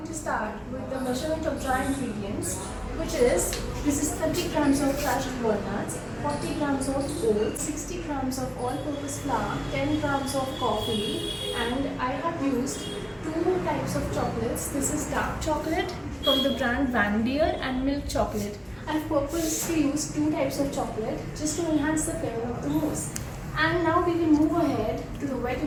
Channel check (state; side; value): identical; both; correlation 1.00